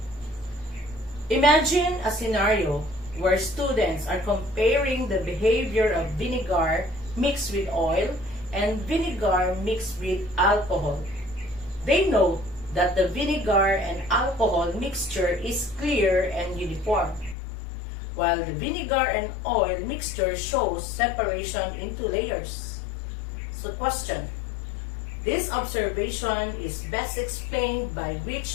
Imagine a scenario where students are comparing the behavior of vinegar mixed with oil and vinegar mixed with alcohol. They note that the vinegar and alcohol mixture is clear and uniform, while the vinegar and oil mixture shows separation into layers. So question. This observation is best explained by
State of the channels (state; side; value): drops out; right; at 17.4 s